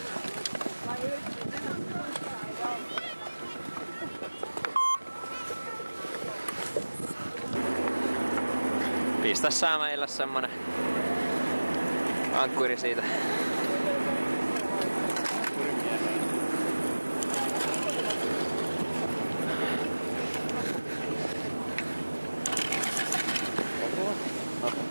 Pistä saa meillä semmonen ankkuri siitä.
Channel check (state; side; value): inverted; both; correlation -1.00